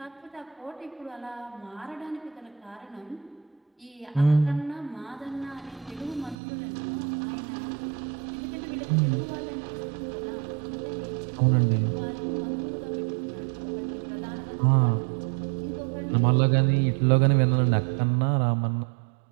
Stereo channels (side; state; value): left; drops out; at 6.4 s